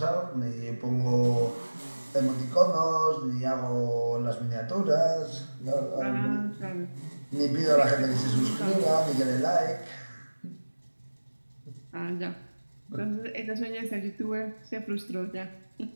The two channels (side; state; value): both; inverted; correlation -1.00